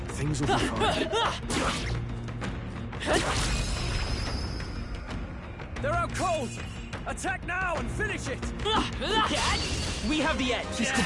Things will be fine. They're out cold! Attack now and finish it! We have the edge! This could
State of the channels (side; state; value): both; identical; correlation 1.00